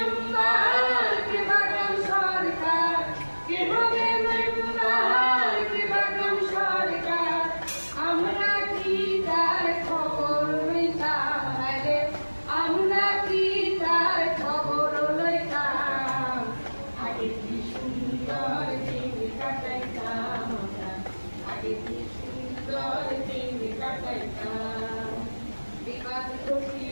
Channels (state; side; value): inverted; both; correlation -1.00